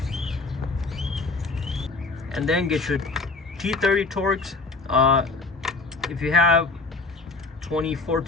And then get your T30 Torx. If you have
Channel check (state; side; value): quieter; right; 3.5 dB